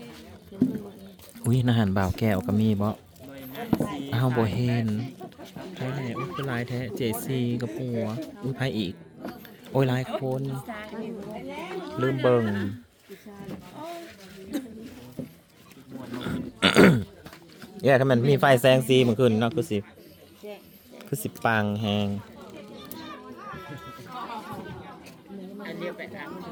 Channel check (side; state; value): both; identical; correlation 1.00